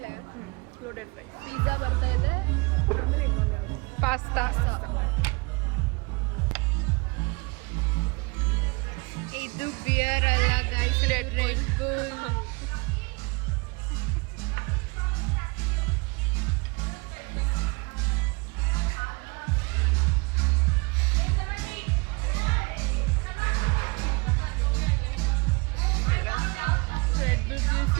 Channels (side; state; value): left; quieter; 28.5 dB